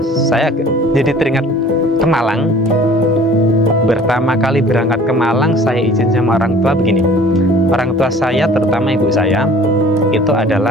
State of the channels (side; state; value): both; normal; correlation 0.49